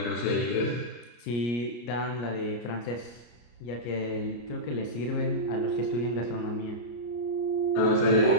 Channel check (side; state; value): right; late; 33 ms